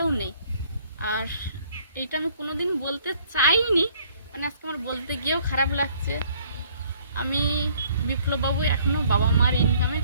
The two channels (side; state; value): both; inverted; correlation -0.60